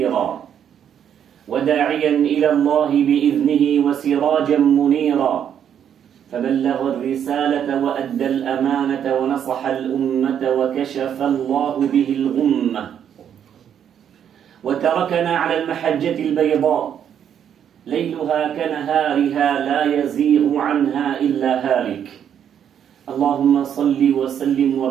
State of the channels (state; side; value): quieter; left; 9.0 dB